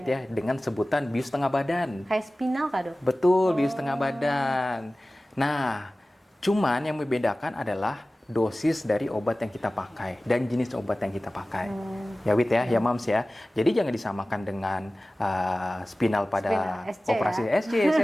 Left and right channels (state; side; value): normal; both; correlation 0.97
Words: ya dengan sebutan bius tengah badan. Kayak spinal kah dok? Betul, bius tengah badan. Nah, cuman yang membedakan adalah dosis dari obat yang kita pakai dan jenis obat yang kita pakai. Ya Wit ya, ya Mams ya. Jadi jangan disamakan dengan spinal pada SC, operasi ya? SC,